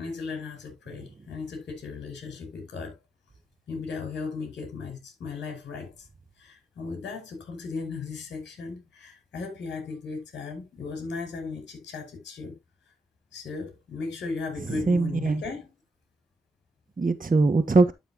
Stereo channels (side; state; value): both; normal; correlation 0.83